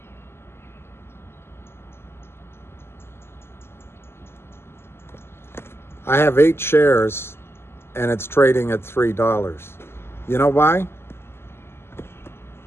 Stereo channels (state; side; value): late; right; 0.12 ms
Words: I have 8 shares, and it's trading at $3. You know why?